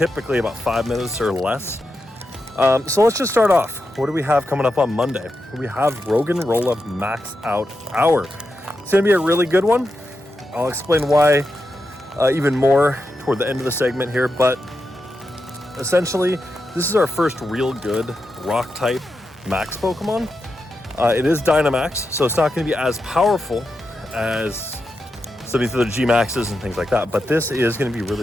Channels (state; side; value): normal; both; correlation 0.87